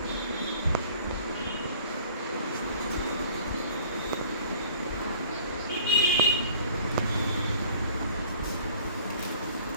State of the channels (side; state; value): both; inverted; correlation -0.52